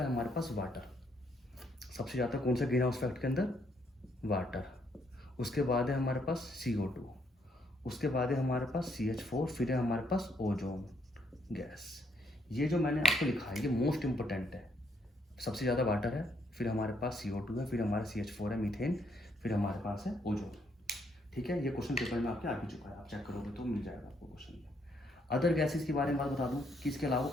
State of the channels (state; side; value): normal; both; correlation 0.72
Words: है हमारे पास वाटर। सबसे ज़्यादा कौन सा ग्रीन हाउस इफेक्ट के अंदर, वाटर। उसके बाद है हमारे पास CO2, उसके बाद है हमारे पास CH4, फिर है हमारे पास ओजोन गैस। ये जो मैंने आपको लिखा है ये मोस्ट इंपॉर्टेंट है। सबसे ज़्यादा वाटर है, फिर हमारे पास CO2 है, फिर हमारा CH4 है मीथेन, फिर हमारे पास है ओजोन, ठीक है। ये क्वेश्चन पेपर में आपके आ भी चुका है, आप चेक करोगे तो मिल जाएगा आपको क्वेश्चन में। अदर गैसेज के बारे में बात बता दूं कि इसके अलावा